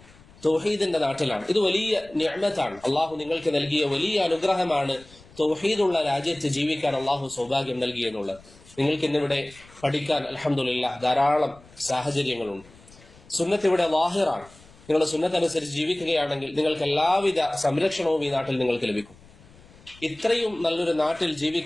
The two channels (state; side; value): noise; left; rumble, 24 dB below the sound